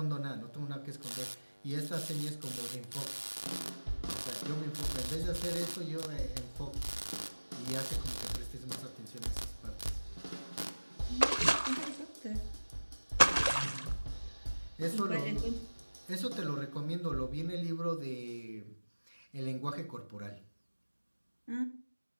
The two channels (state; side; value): inverted; both; correlation -1.00